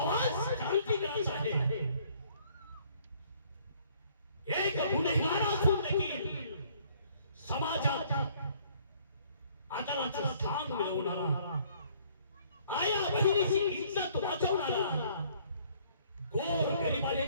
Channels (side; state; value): both; inverted; correlation -0.61